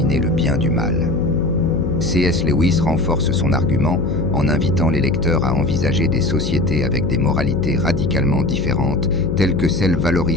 le bien du mal. C.S. Lewis renforce son argument en invitant les lecteurs à envisager des sociétés avec des moralités radicalement différentes, telles que celles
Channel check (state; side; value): noise; left; hum, 2 dB below the sound